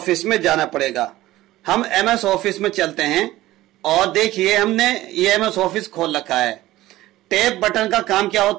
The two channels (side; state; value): left; quieter; 16.3 dB